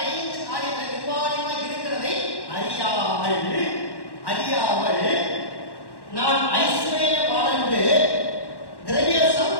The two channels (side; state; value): right; late; 1.1 ms